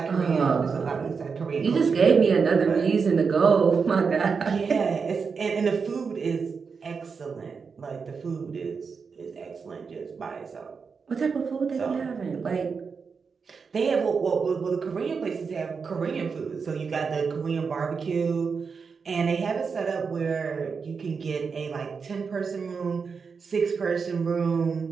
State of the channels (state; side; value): quieter; left; 5.4 dB